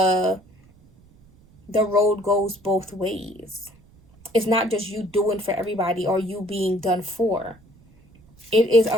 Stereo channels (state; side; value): noise; right; rumble, 28 dB below the sound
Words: the road goes both ways. It's not just you doing for everybody or you being done for. It is